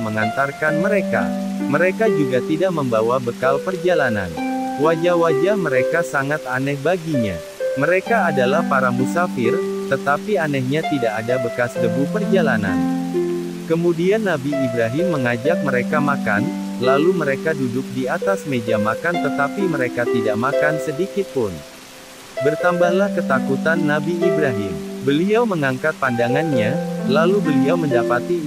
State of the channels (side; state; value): both; identical; correlation 1.00